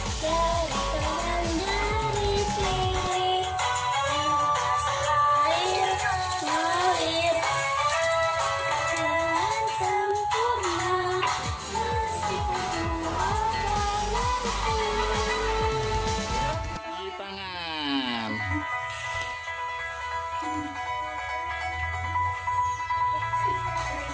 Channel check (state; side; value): identical; both; correlation 1.00